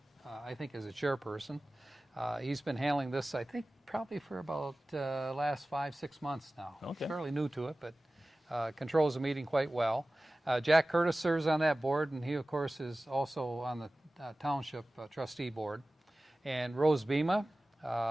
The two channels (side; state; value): both; normal; correlation 0.97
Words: I think, as a chairperson. He's been handling this, I think, probably for about last 5-6 months now. Okay. Fairly new to it, but controls the meeting quite well. Jack Curtis serves on that board, and he, of course, is also on the Township Trustee Board. And Rose Bema,